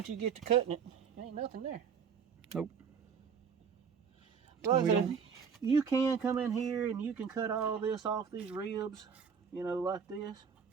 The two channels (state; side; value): quieter; left; 6.6 dB